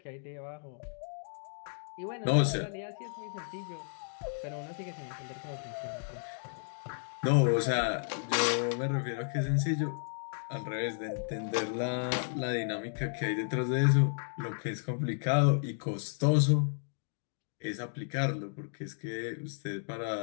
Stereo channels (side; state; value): right; silent; digital silence